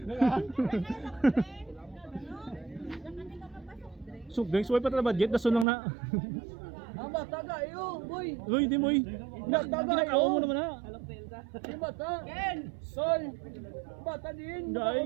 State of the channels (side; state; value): left; drops out; at 5.7 s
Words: Sugdeng suway pa tra budget dason lang na. Ang bata gayo, boy. Uy, di mo eh. Ginakaw mo naman ha. Ang bata. Ken. Sol. Bata din. Dai.